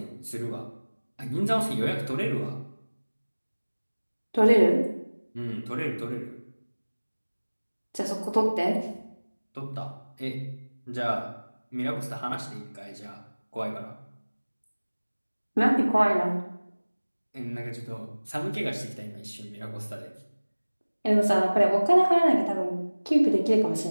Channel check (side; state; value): both; inverted; correlation -1.00